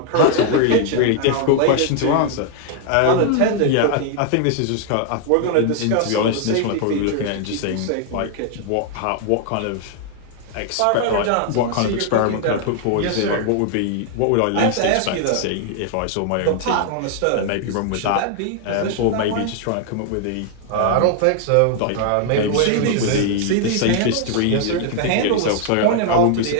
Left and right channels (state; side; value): different; both; correlation 0.00